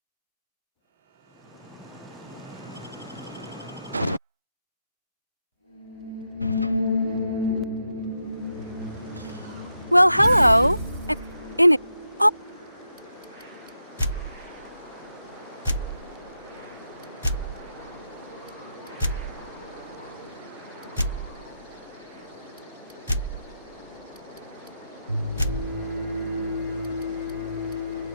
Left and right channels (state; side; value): inverted; both; correlation -0.85